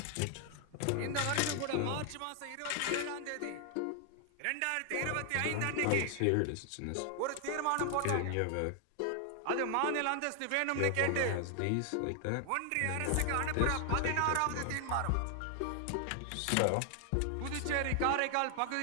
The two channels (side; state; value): both; different; correlation 0.00